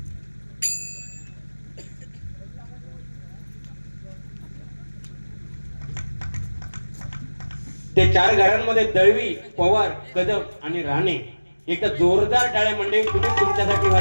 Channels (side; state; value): both; inverted; correlation -1.00